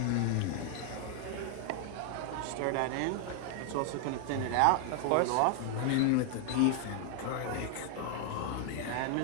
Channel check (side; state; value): both; different; correlation 0.00